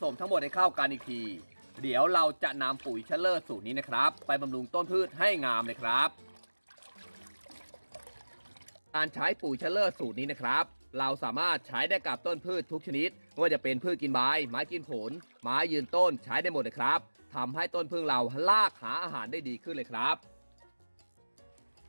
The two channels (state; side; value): inverted; both; correlation -1.00